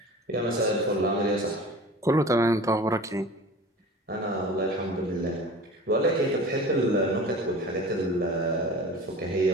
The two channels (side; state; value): both; normal; correlation 0.39